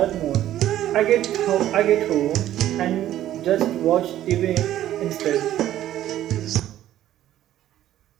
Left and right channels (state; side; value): quieter; left; 12.7 dB